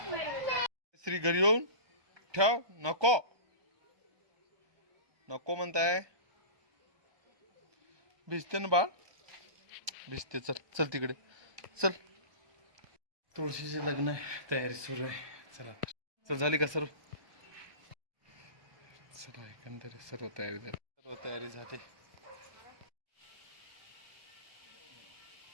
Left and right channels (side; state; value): left; late; 1.2 ms